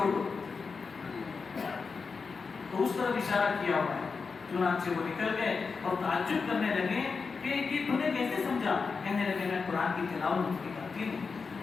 دو، تو اس طرف اشارہ کیا ہوا ہے۔ چنانچہ وہ نکل گئے اور تعجب کرنے لگے کہ یہ تم نے کیسے سمجھا، کہنے لگے میں قرآن کی تلاوت کرتی ہوں،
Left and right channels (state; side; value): quieter; right; 4.9 dB